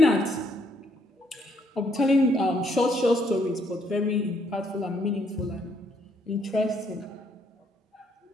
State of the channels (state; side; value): normal; both; correlation 0.70